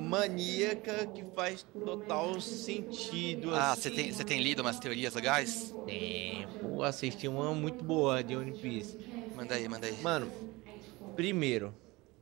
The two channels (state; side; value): quieter; left; 22.3 dB